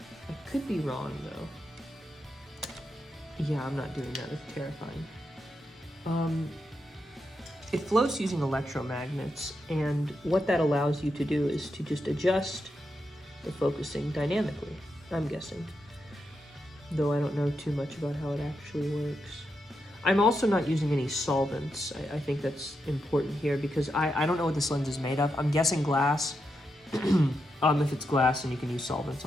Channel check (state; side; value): normal; both; correlation 0.85